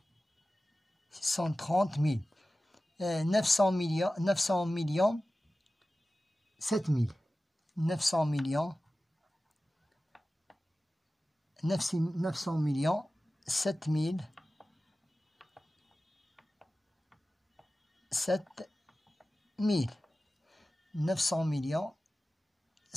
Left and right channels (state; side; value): normal; both; correlation 0.95